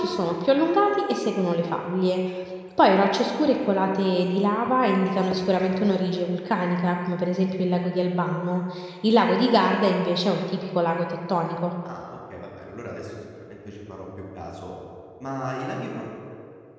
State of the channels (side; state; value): both; identical; correlation 1.00